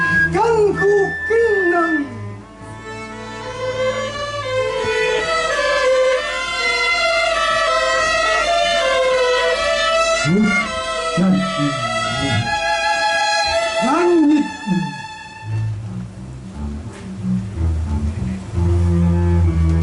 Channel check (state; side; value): identical; both; correlation 1.00